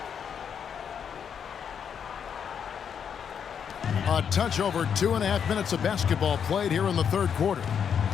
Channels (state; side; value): quieter; right; 7.6 dB